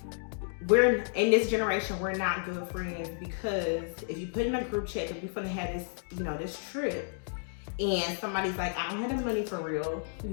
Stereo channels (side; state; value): right; silent; digital silence